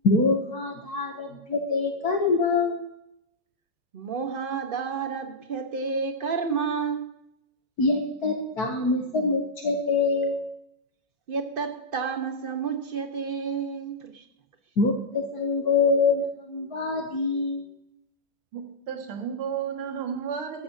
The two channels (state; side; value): normal; both; correlation -0.09